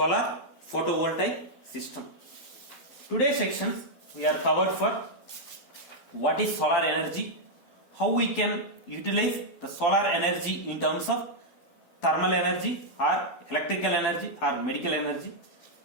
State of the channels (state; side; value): late; right; 12 ms